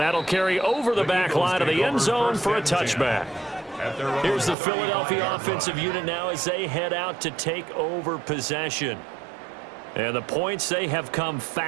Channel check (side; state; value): left; drops out; at 4.5 s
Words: that'll carry over the back line of the end zone for a touchback. Here's the Philadelphia offensive unit now as they head out to take over possession. And the points, they have come